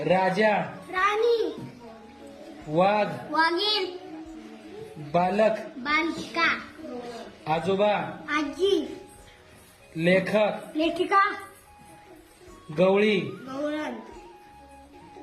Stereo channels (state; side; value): identical; both; correlation 1.00